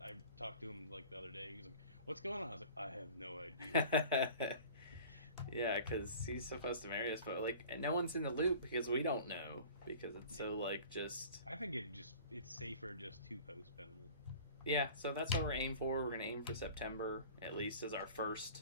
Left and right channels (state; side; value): inverted; both; correlation -0.43